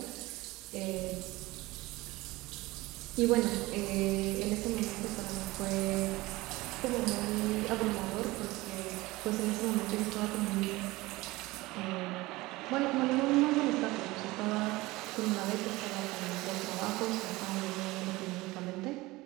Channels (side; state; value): left; quieter; 20.4 dB